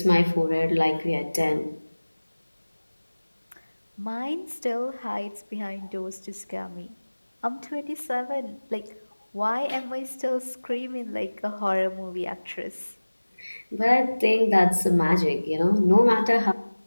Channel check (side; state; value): both; inverted; correlation -1.00